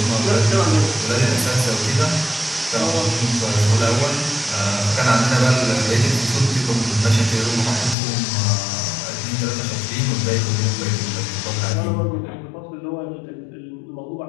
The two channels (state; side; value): drops out; right; at 8.0 s